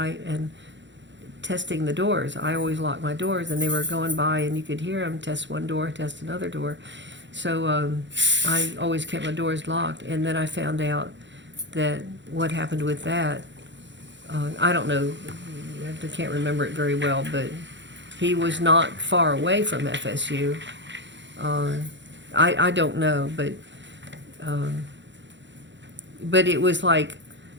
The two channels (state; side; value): late; left; 0.53 ms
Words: and testing the doors. I always lock my doors, and they were going by, and you could hear them test one door, test another door. So I always kept my doors locked, and then I found out that what happened with that, I don't know, I can't remember it very well, but he was not far away from FSU. I don't know, but it was like